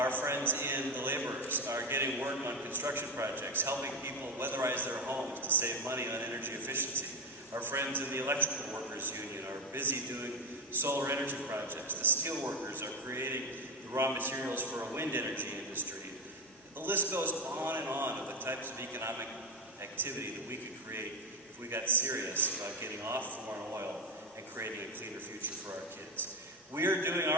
friends in the laborers are getting work on construction projects, helping people weatherize their homes to save money on energy efficiency. Our friends in the electrical workers union are busy doing solar energy projects. The steel workers are creating the raw materials for a wind energy industry. The list goes on and on of the types of economic activity that we could create if we got serious about getting off foreign oil and creating a cleaner future for our kids. We are doing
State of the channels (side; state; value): both; normal; correlation 0.18